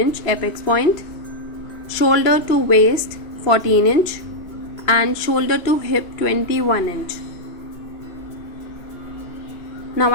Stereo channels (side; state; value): right; late; 3.0 ms